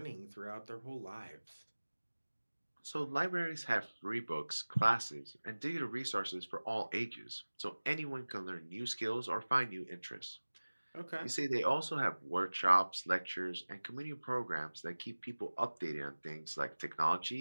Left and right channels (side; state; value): both; inverted; correlation -1.00